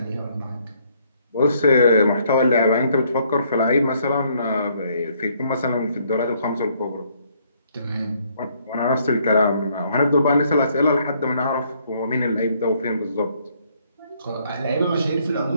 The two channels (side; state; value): both; inverted; correlation -0.68